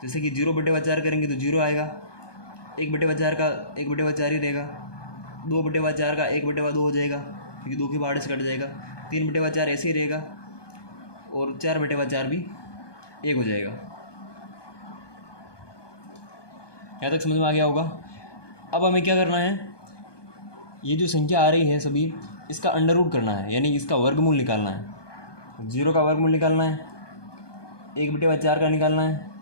जैसे कि 0/4 करेंगे तो 0 आएगा, 1/4 का 1/4 ही रहेगा, 2/4 का 1/2 हो जाएगा क्योंकि 2 के बाद से कट जाएगा, 3/4 ऐसे ही रहेगा, और 4/4 भी 1 हो जाएगा। यहाँ तक समझ में आ गया होगा। अब हमें क्या करना है, ये जो संख्या आ रही है सभी, इसका अंडर रूट करना है, यानी इसका वर्गमूल निकालना है। 0 का वर्गमूल निकालना है, 1/4 का निकालना है,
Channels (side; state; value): right; late; 1.2 ms